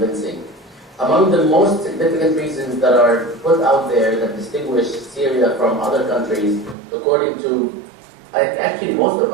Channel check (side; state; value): left; drops out; at 6.8 s